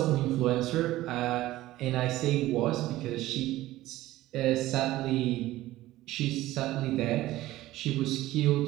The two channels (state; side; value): quieter; left; 16.2 dB